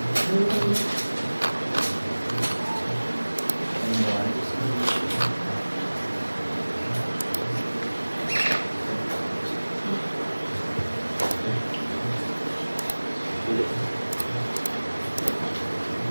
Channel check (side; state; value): both; inverted; correlation -1.00